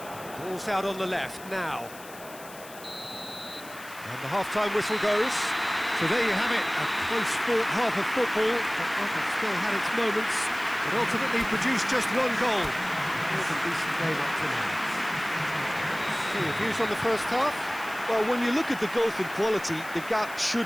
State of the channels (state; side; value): noise; left; hiss, 18 dB below the sound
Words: Ball's out on the left now. And the half-time whistle goes. So there you have it, a close-fought half of football that still had its moments, but ultimately produced just one goal. It was a decent game up to now. So your views on the first half? Well, when you look at the gulf in quality, the gap